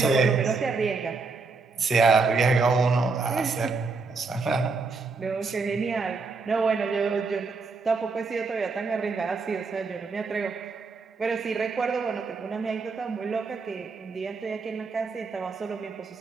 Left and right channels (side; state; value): left; quieter; 4.3 dB